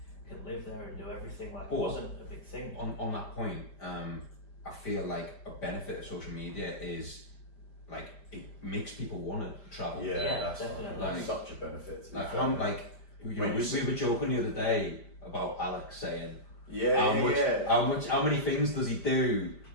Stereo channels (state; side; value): late; right; 5.0 ms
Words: can live there and do everything. Like it wasn't a big thing. On that point, I feel like a benefit of social media is like it makes people want to travel. Yeah, that's definitely. like such a benefit. Like we were joking the other day about Alex saying how many things does he do